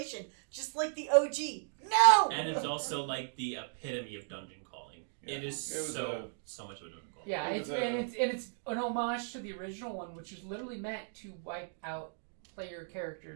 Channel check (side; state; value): left; silent; digital silence